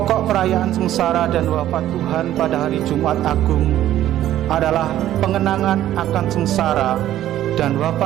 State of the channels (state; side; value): quieter; left; 12.8 dB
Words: perayaan sengsara dan wafat Tuhan pada hari Jumat Agung adalah pengenangan akan sengsara dan